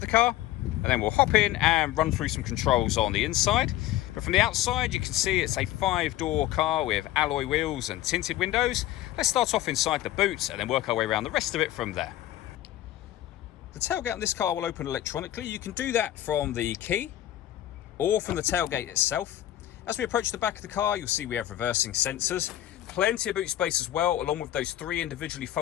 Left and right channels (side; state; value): right; quieter; 13.8 dB